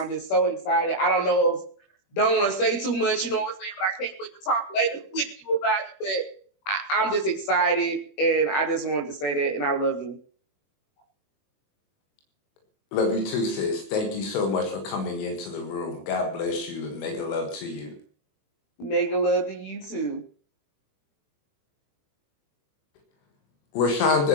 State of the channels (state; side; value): late; right; 21 ms